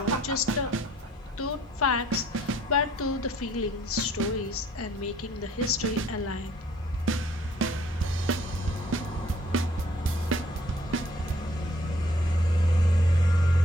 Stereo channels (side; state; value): both; normal; correlation 0.60